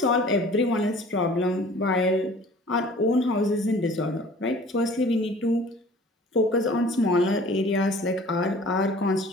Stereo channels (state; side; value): normal; both; correlation 0.48